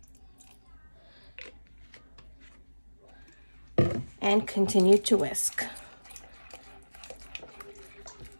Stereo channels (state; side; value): inverted; both; correlation -1.00